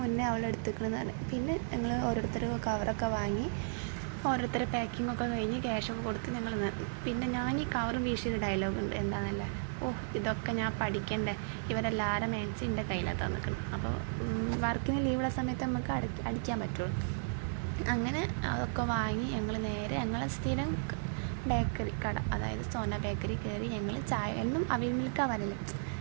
മുന്നേ അവൾ എടുത്തിക്കുന്നതാണ്. പിന്നെ ഞങ്ങൾ ഓരോരുത്തർ കവറൊക്കെ വാങ്ങി, ഓരോരുത്തരെ പാക്കിങ്ങൊക്കെ കഴിഞ്ഞ് ക്യാഷൊക്കെ കൊടുത്ത് ഞങ്ങൾ. പിന്നെ ഞാൻ ഈ കവറും വീശിയൊരു ഡയലോഗ് ഉണ്ട്, എന്താണെന്നല്ലേ, ഇതൊക്കെ ഞാൻ പഠിക്കണ്ടേ, ഇവരെല്ലാവരും മാക്സി എൻ്റെ കയ്യിലാണ് തന്നിക്കണം. അപ്പോൾ വർക്കിന് ലീവുള്ള സമയത്ത് നമുക്ക് അടിക്കാൻ പറ്റുള്ളൂ. അങ്ങനെ അതൊക്കെ വാങ്ങി ഞങ്ങൾ നേരെ ഞങ്ങളെ സ്ഥിരം ബേക്കറി കട, അതായത് സോന ബേക്കറി കയറി. ഞങ്ങൾ ചായ എന്നും അവിൽ മിൽക്കാണ് വരല്,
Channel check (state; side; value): silent; left; digital silence